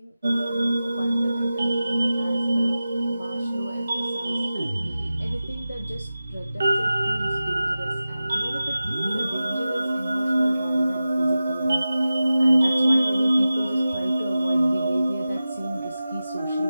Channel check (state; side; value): inverted; both; correlation -0.94